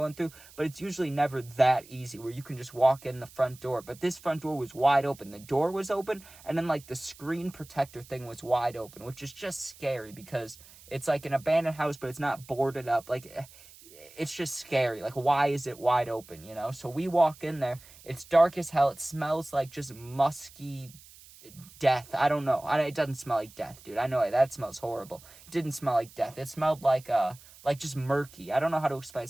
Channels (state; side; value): noise; right; hiss, 22 dB below the sound